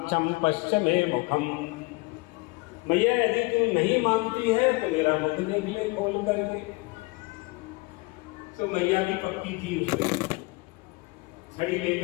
पश्य मे मुखम। मैया यदि तू नहीं मानती है तो मेरा मुख देख ले खोल करके। तो मैया भी पक्की थी, उसमें छड़ी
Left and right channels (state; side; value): quieter; right; 25.7 dB